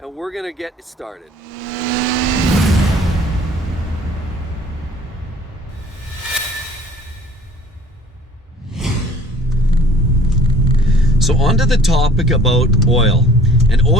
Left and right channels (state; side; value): normal; both; correlation 0.51